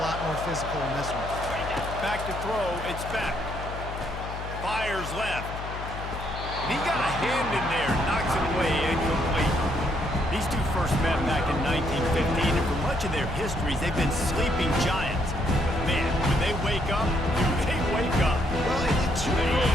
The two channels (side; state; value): left; noise; hum, 8 dB below the sound